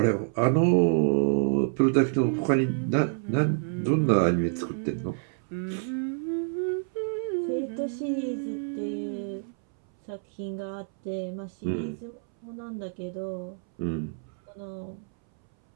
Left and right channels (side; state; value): left; silent; 60 dB below the other